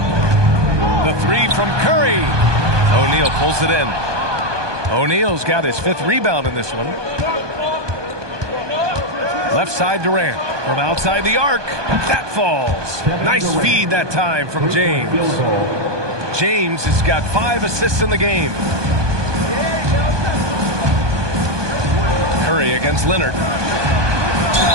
The 3 from Curry. O'Neal pulls it in. O'Neal's got his 5th rebound in this one. Left side Durant. From outside the arc. That falls. Nice feed that time from James. James has got 5 assists in the game. Curry against Leonard.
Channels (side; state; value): left; late; 1.2 ms